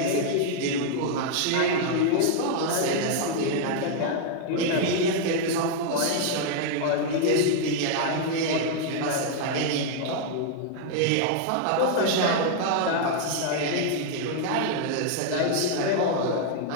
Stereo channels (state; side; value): different; both; correlation 0.00